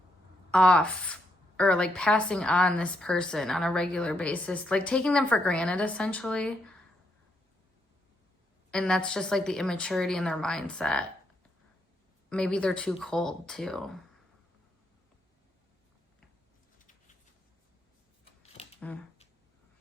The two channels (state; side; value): normal; both; correlation 0.77